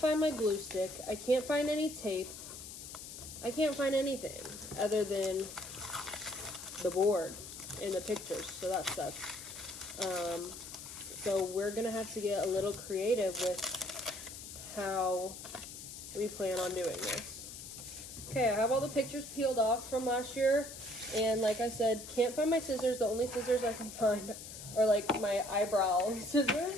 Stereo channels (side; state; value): left; noise; hiss, 11 dB below the sound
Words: my glue stick. I can't find any tape. I can't find anything other than the board and the pictures, so that sucks. So we're gonna have to get a little creative with how we plan on doing this. Okay, I have all the pictures peeled off from last year, and like I said, can't find my scissors. The only scissors I can find are like my eyebrow